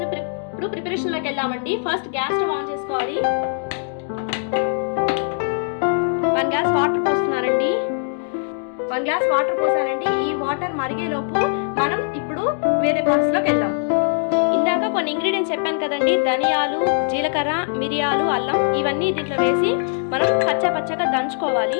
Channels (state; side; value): silent; right; digital silence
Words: ఇప్పుడు ప్రిపరేషన్లోకి వెళ్దామండి. ఫస్ట్ గ్యాస్ స్టవ్ ఆన్ చేసుకోవాలి. 1 గ్లాస్ వాటర్ పోస్తున్నానండి. 1 గ్లాస్ వాటర్ పోసానండి. ఈ వాటర్ మరిగేలోపు మనం ఇప్పుడు వేరే ప్రాసెస్లోకి వెళ్దాం. ఇందాక కొన్ని ఇంగ్రీడియంట్స్ చెప్పాను కదండి, ధనియాలు, జీలకర్ర, మిరియాలు, అల్లం, ఇవన్నీ దీంట్లో వేసి మనం పచ్చగా